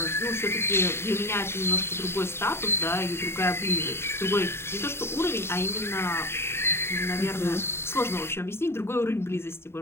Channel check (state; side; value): late; right; 0.12 ms